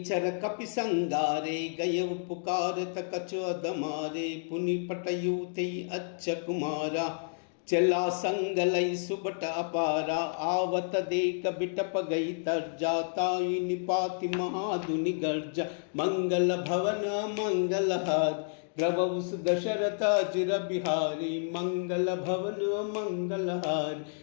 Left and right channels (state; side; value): silent; right; digital silence